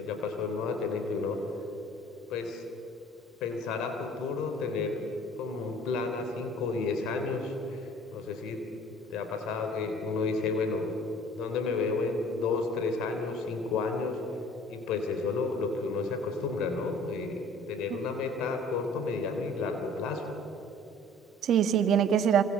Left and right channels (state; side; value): normal; both; correlation 0.50